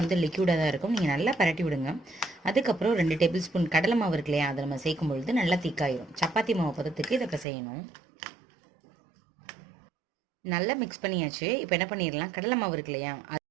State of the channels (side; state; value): left; drops out; at 7.5 s